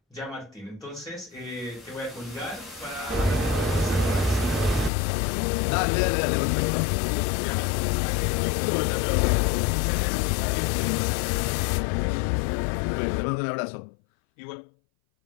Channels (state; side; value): drops out; right; at 4.9 s